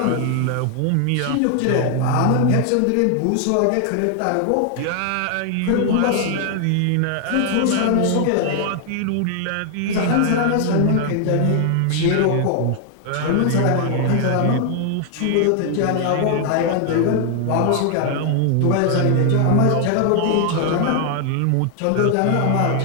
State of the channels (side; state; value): both; different; correlation 0.00